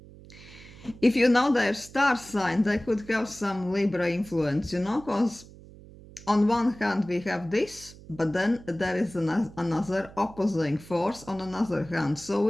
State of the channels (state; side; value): noise; right; hum, 20 dB below the sound